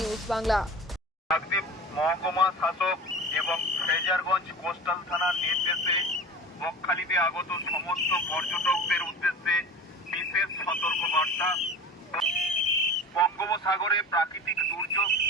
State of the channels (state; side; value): normal; both; correlation 0.36